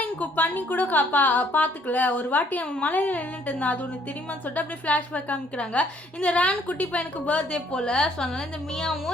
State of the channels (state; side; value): normal; both; correlation 0.64